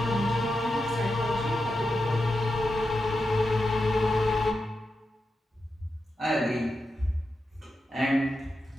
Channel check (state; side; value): normal; both; correlation 0.89